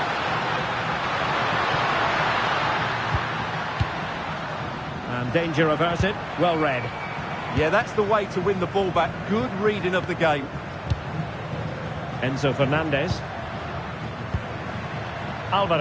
Danger averted, well read. Yeah, that's the way to win the ball back. Good reading of the game. Enzo Fernandez.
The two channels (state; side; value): identical; both; correlation 1.00